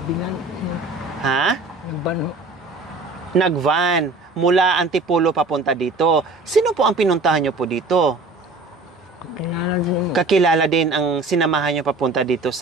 Bilan. Ha? Nagbano. Nagvan mula Antipolo papunta dito. Sino po ang pinuntahan nyo po dito? Kilala din mo. Kakilala din ang sinamahan nyo papunta dito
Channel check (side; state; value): left; quieter; 3.4 dB